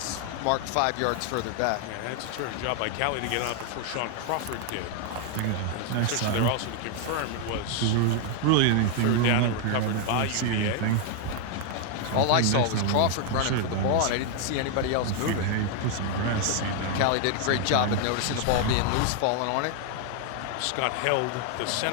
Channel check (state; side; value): different; both; correlation 0.00